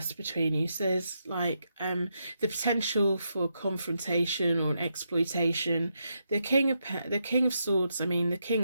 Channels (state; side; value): inverted; both; correlation -0.82